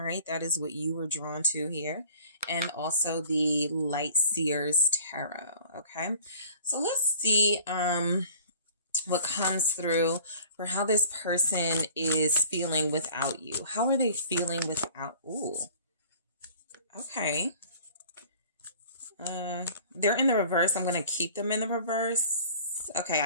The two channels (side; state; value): both; inverted; correlation -0.48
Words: right. That is what you were drawn to here. And also the Light Seers Tarot. Okay. So let's see, what comes through for how this person is feeling without you. How are they feeling without? Ooh. Okay. They're in the reverse. I'm going to keep them in the reverse. Okay.